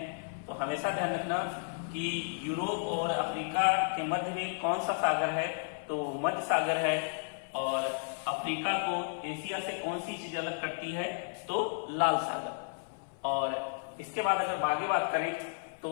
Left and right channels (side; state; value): right; silent; 56 dB below the other